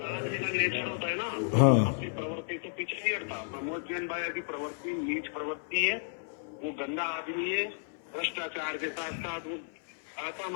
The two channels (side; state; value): right; silent; 56 dB below the other